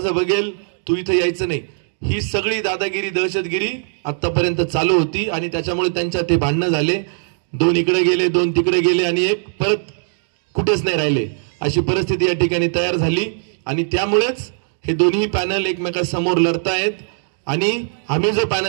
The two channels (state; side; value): silent; left; digital silence